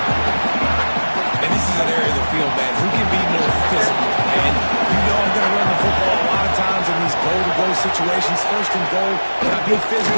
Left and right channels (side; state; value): both; inverted; correlation -1.00